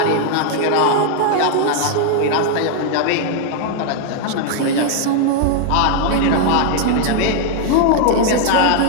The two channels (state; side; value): different; both; correlation 0.00